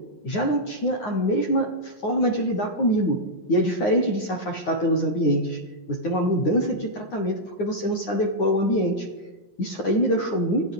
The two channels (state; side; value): late; right; 9.6 ms